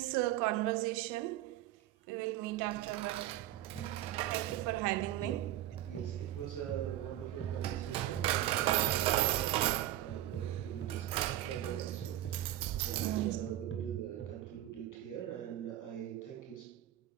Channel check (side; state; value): left; quieter; 13.6 dB